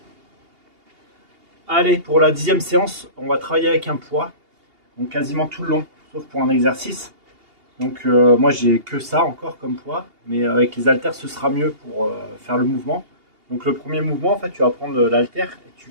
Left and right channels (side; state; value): left; late; 2.8 ms